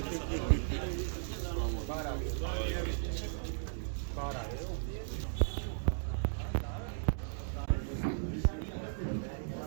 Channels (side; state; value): left; silent; digital silence